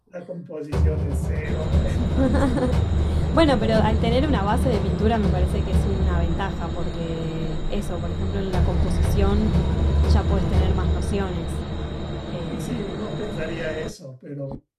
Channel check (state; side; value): identical; both; correlation 1.00